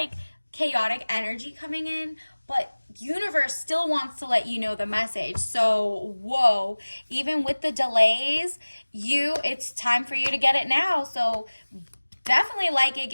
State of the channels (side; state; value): both; inverted; correlation -1.00